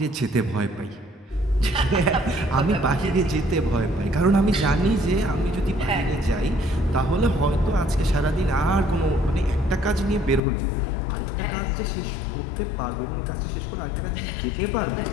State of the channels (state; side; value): drops out; right; at 10.4 s